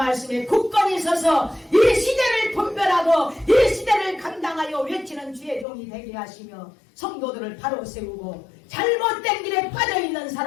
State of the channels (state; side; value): drops out; right; at 5.7 s